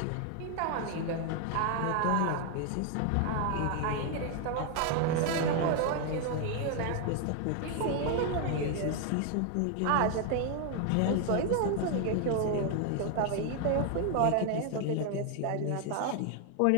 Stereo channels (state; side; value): different; both; correlation 0.00